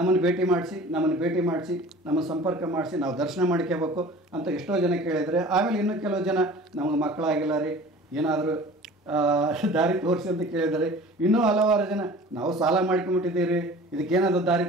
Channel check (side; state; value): both; normal; correlation 0.43